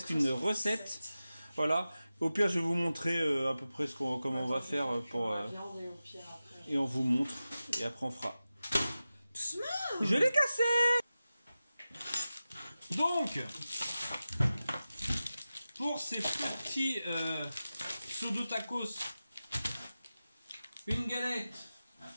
une recette. Voilà. Au pire, je vais vous montrer à peu près comment on va faire pour. Et on vous montre. Et après, on fera. Je l'ai cassé. Donc, pour ces petits pseudo tacos, une galette.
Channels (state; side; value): inverted; both; correlation -0.94